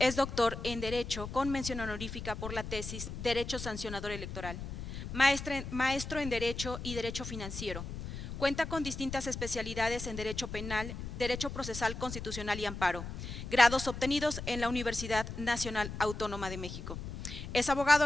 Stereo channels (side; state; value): left; noise; rumble, 8 dB below the sound